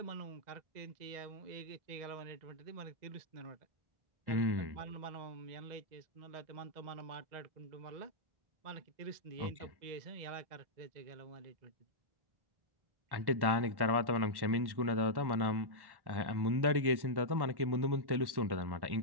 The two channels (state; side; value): late; left; 1.1 ms